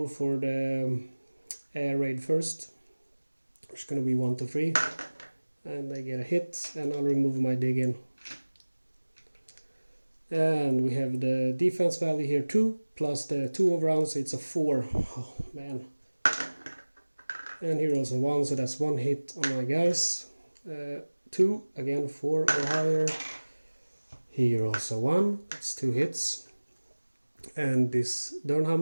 for the air raid first. It's going to be 1 to 3, and they get a hit, and I'll remove my dig in. And we have the defense value here 2 plus the 2 overruns, it's a 4. Oh man. And here also 1, so that's 1 hit on my guys. 2, again 4 or higher. Here also 1, that's 2 hits. And this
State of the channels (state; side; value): inverted; both; correlation -1.00